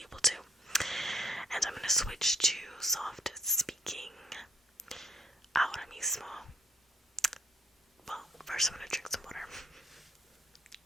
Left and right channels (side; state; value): both; normal; correlation 0.65